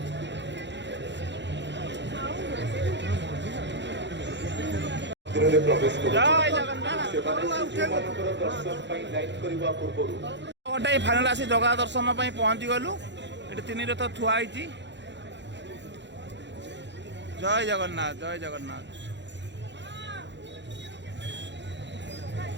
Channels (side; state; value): left; late; 0.52 ms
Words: गोटे फाइनाल आसी जगह दर्शन पहुंची गलु ये तीन रथ थुआई। जय जगन्नाथ जय जगन्नाथ